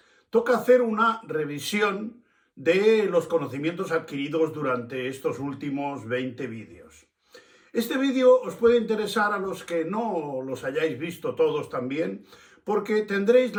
Toca hacer una revisión de los conocimientos adquiridos durante estos últimos 20 vídeos. Este vídeo os puede interesar a los que no los hayáis visto todos también, porque tendréis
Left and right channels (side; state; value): both; identical; correlation 1.00